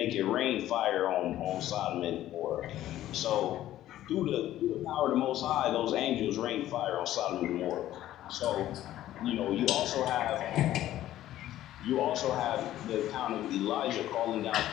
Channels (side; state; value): right; quieter; 13.5 dB